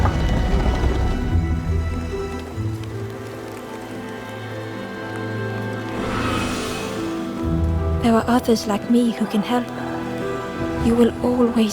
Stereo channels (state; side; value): identical; both; correlation 1.00